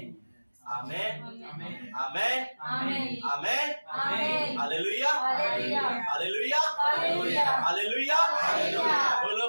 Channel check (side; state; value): both; inverted; correlation -1.00